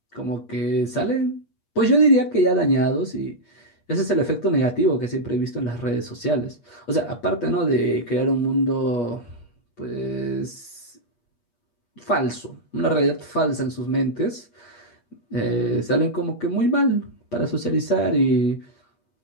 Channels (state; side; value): late; right; 8.4 ms